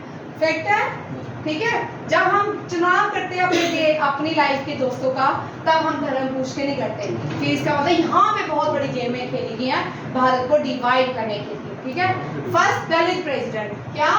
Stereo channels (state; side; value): identical; both; correlation 1.00